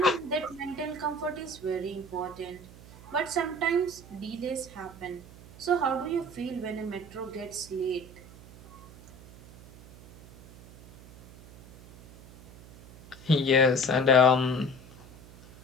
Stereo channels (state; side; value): noise; right; hum, 20 dB below the sound